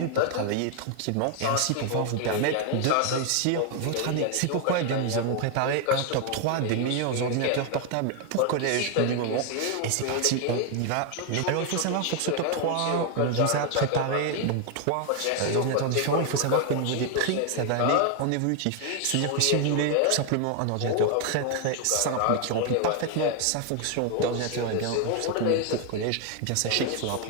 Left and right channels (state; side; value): different; both; correlation 0.00